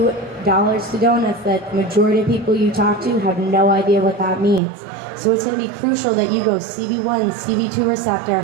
dollars to donuts that the majority of people you talk to have no idea what that means. So it's going to be crucial that you go CB1, CB2 receptor.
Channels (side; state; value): left; drops out; at 4.6 s